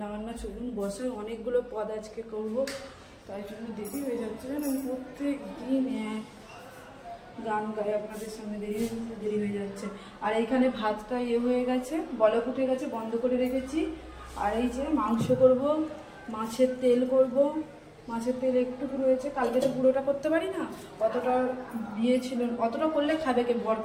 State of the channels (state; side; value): identical; both; correlation 1.00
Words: বান্না চলুন বসে, অনেকগুলো পদ আজকে করব, তাই জন্য দেরি হয়ে যাচ্ছে। আমি প্রত্যেক দিন গান গাই, আপনাদের সামনে দেরি হয়ে যাচ্ছে। আর এইখানে ভাতটা হয়ে গেছে, বলক উঠে গেছে, বন্ধ করে রেখেছি। আর এই যে মাংস করব, মাছের তেল করব। মাছের তেল একটুকু রয়েছে, কালকে তো পুরোটা করতে পারি না, অতটা দিয়েছিল। অতটা করলে খাবে কে? বর